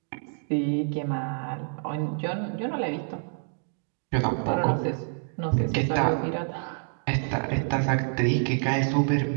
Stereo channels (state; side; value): silent; left; 58 dB below the other